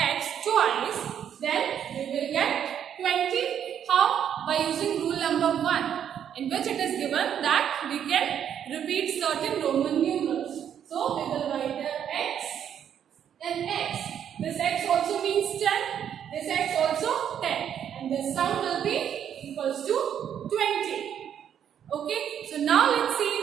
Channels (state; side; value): quieter; left; 9.1 dB